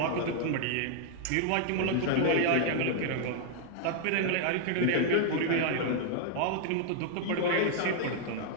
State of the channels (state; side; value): different; both; correlation 0.00